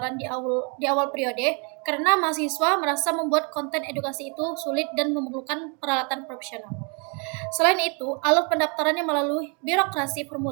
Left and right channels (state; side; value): quieter; left; 35.1 dB